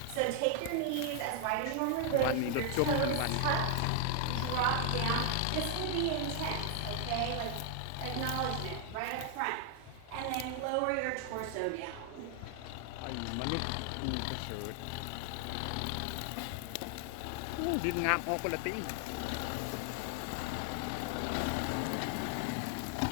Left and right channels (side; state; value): both; different; correlation 0.00